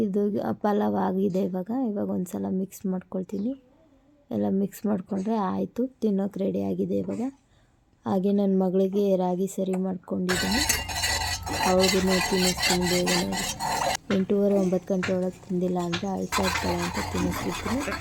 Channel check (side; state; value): both; identical; correlation 1.00